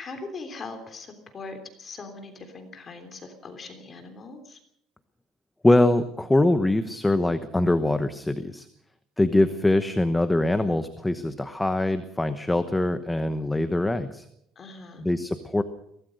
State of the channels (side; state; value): both; normal; correlation 0.95